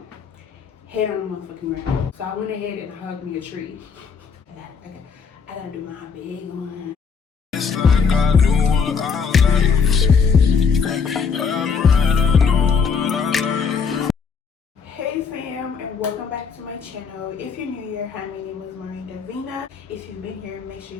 Head on the motherfucking ground. So I went ahead and hugged me a tree. I gotta do my big one. It's like I knew what I liked. I'm right, I know what I like. Hey fam, and welcome back to my channel. If you're new here, hi, my name is Omorinsolaomosebi. If you've been here, make sure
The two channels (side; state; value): right; quieter; 5.8 dB